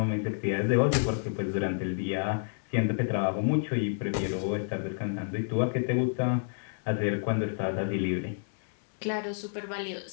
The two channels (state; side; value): silent; right; digital silence